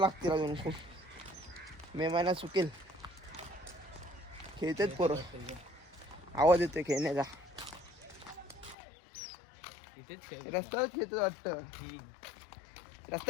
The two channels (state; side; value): drops out; right; at 8.8 s